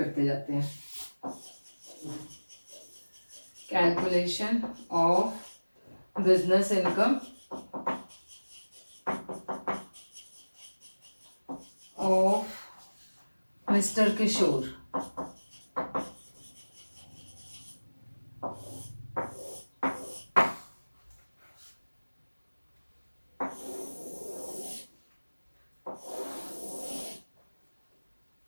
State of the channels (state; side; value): inverted; both; correlation -1.00